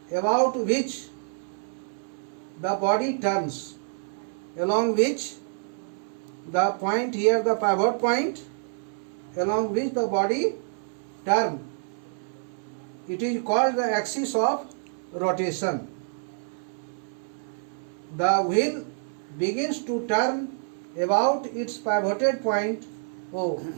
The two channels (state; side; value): silent; left; 60 dB below the other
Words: about which the body turns, along which the point here, the pivot point, along which the body turns. It is called the axis of rotation. The wheel begins to turn about its pivoted point O.